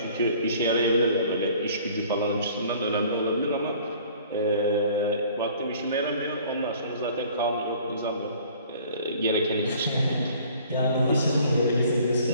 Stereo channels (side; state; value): both; inverted; correlation -0.53